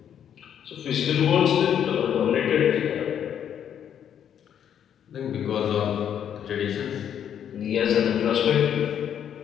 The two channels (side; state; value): right; quieter; 9.2 dB